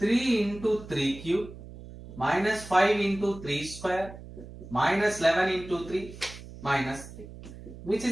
into 3 cube minus 5 into 3 square minus 11 into 3 minus 3, which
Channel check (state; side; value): noise; right; hum, 15 dB below the sound